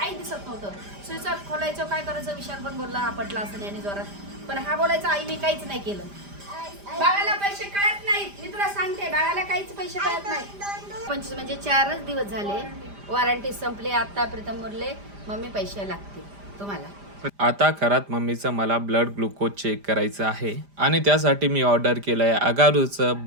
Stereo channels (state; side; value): late; left; 5.0 ms